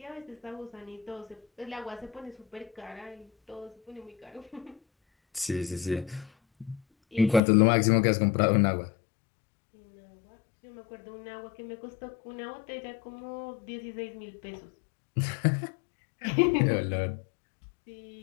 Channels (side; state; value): right; drops out; at 7.4 s